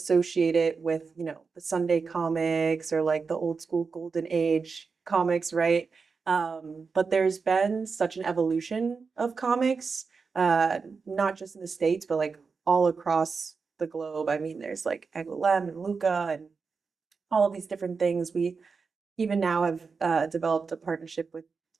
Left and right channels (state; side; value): quieter; left; 5.0 dB